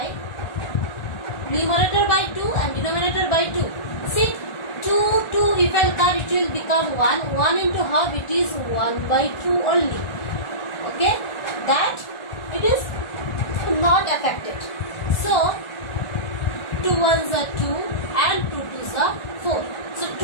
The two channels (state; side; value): late; right; 1.4 ms